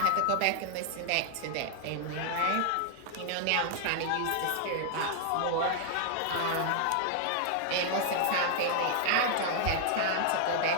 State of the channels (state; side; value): different; both; correlation 0.00